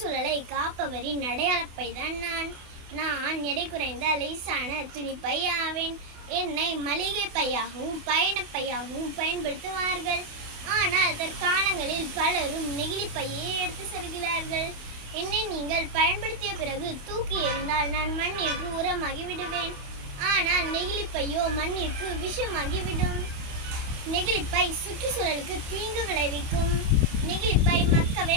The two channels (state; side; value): late; left; 28 ms